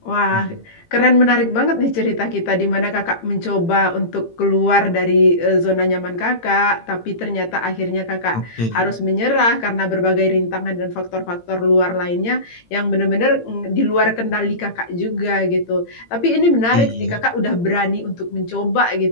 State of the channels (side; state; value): right; late; 18 ms